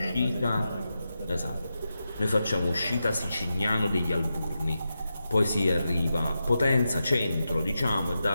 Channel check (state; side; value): inverted; both; correlation -0.89